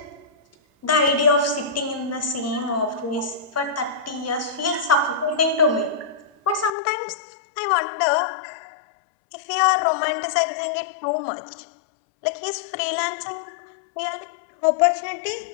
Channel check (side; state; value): right; drops out; at 6.7 s